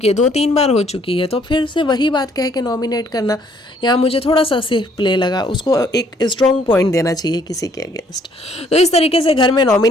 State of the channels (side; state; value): both; normal; correlation 0.64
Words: है, 2-3 बार हो चुकी है, तो फिर से वही बात कह के नॉमिनेट करना यहाँ मुझे थोड़ा सा सेफ प्ले लगा। उसको एक स्ट्रॉन्ग पॉइंट देना चाहिए किसी के अगेंस्ट। तो इस तरीके से घर में